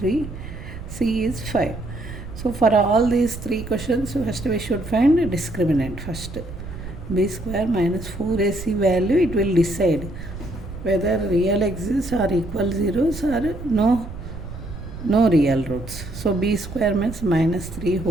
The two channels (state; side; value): noise; right; rumble, 11 dB below the sound